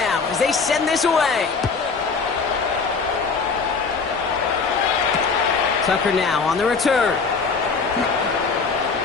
as they send this away. Tucker now on the return.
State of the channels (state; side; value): quieter; right; 4.8 dB